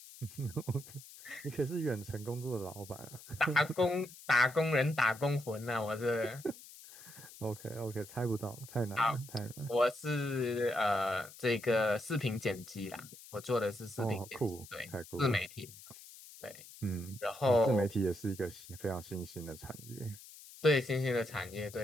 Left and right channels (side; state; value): left; noise; hiss, 17 dB below the sound